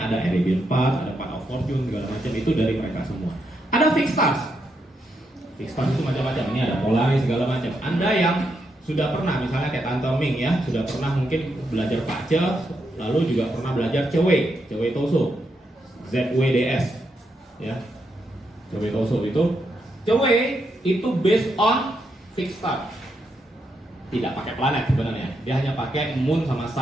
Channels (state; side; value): normal; both; correlation 0.81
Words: ada Arabian Path, ada Path of Fortune, segala macam itu dari mereka semua. Ada fixed stars. Fixed stars itu macam-macam. Ini ada Polaris segala macam. Anda yang sudah pernah, misalnya kayak Tante Ming ya, sudah pernah mungkin belajar Pace, lalu juga pernah belajar Cewei Toso, ZWDS, ya. Cewei Toso itu based on fixed star. Tidak pakai planet sebenarnya. Dia hanya pakai moon sama